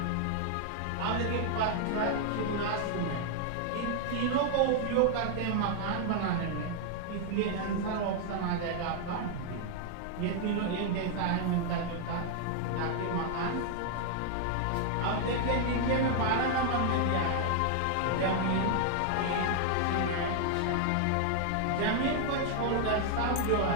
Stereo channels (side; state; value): both; different; correlation 0.00